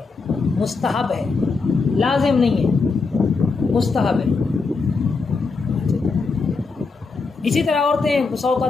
मुस्तहब है, लाजिम नहीं है, मुस्तहब है। इसी तरह औरतें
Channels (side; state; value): right; quieter; 4.3 dB